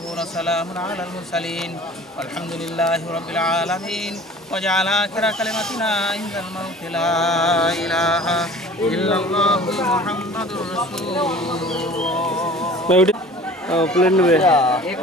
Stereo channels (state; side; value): normal; both; correlation 0.45